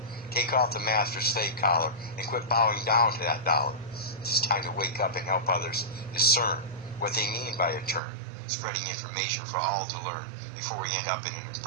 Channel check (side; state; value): left; drops out; at 8.0 s